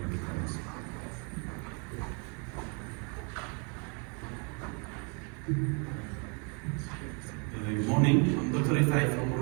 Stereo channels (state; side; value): quieter; left; 35.9 dB